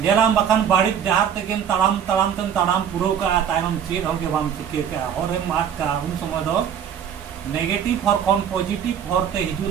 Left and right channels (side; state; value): left; quieter; 8.5 dB